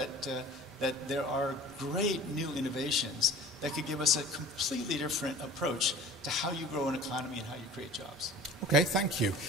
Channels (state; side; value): normal; both; correlation 0.43